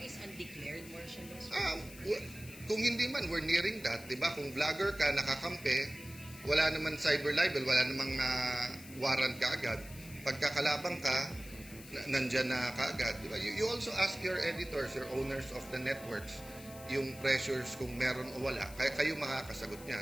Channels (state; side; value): noise; left; hiss, 17 dB below the sound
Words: is undeclared martial law? Kung hindi man, we're nearing that, di ba? Kung vlogger ka, nakakampi, wala naman cyber libel, wala namang warrant ka agad. Pagkakalabang ka, nandyan na ka agad, di ba? You also ask your editors, your owners of the networks, yung pressures kung meron o wala. Kaya kayo makakasagot